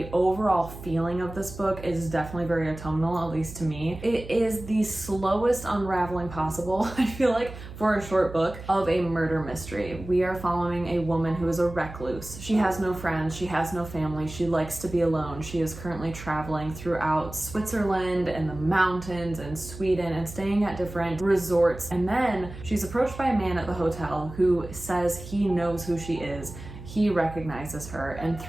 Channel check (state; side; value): noise; right; hum, 13 dB below the sound